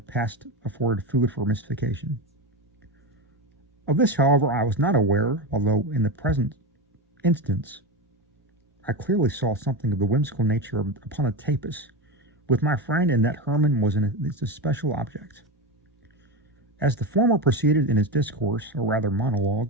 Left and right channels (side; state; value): both; normal; correlation 0.18